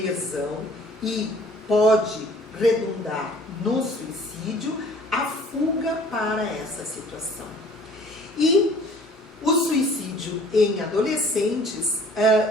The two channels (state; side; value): normal; both; correlation 0.52